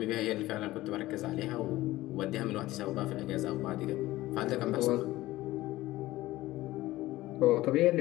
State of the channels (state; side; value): quieter; right; 17.2 dB